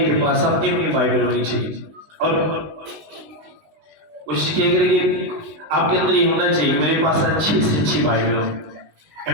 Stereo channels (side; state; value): left; late; 19 ms